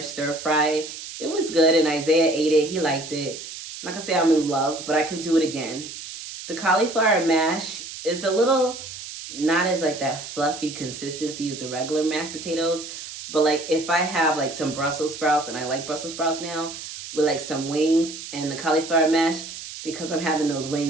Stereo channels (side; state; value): right; noise; hiss, 11 dB below the sound